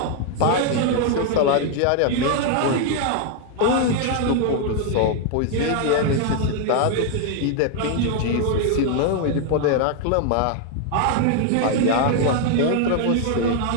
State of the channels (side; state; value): both; different; correlation 0.00